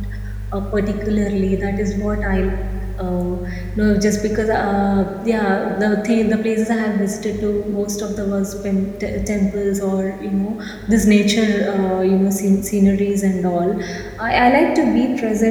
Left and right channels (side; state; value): both; identical; correlation 1.00